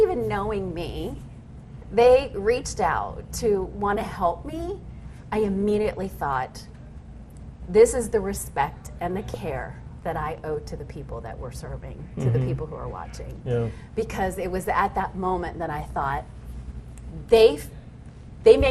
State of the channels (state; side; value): identical; both; correlation 1.00